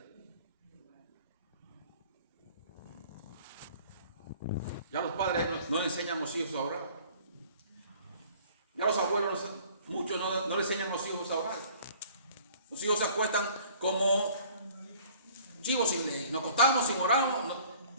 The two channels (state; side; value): inverted; both; correlation -0.52